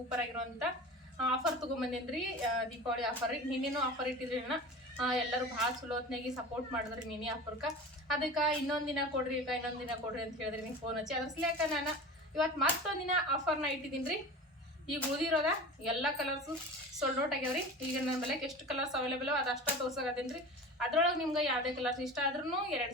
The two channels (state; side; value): normal; both; correlation 0.34